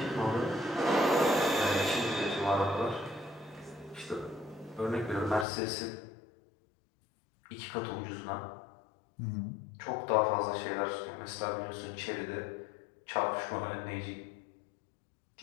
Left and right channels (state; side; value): drops out; right; at 5.5 s